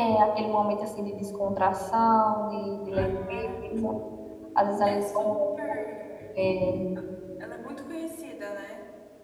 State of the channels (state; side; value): identical; both; correlation 1.00